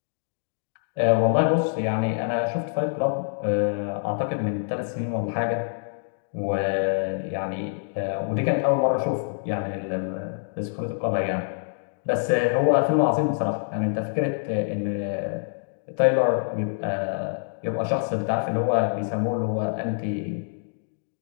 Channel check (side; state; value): right; silent; digital silence